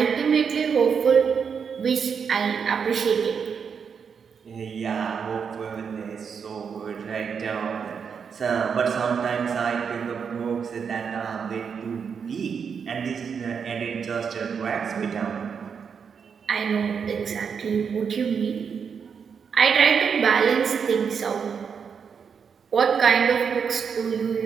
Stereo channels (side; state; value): left; quieter; 6.6 dB